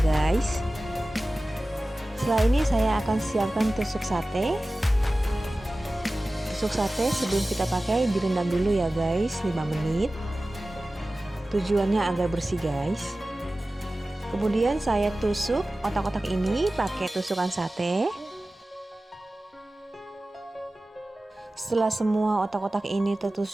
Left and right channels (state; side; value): normal; both; correlation 0.96